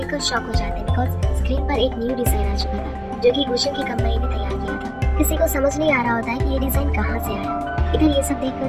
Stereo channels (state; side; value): identical; both; correlation 1.00